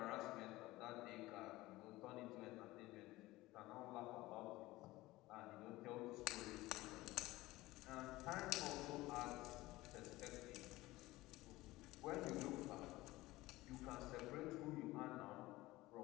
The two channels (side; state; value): right; quieter; 18.6 dB